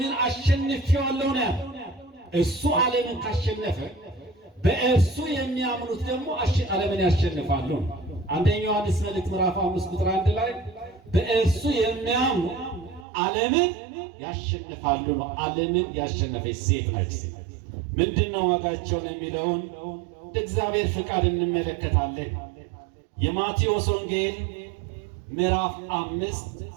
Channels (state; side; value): drops out; left; at 13.1 s